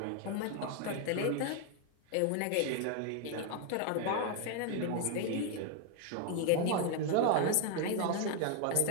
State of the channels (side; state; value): both; different; correlation 0.00